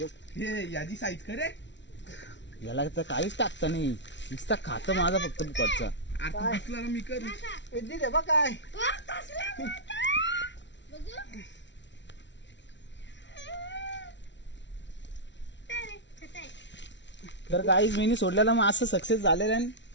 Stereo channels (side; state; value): right; late; 0.52 ms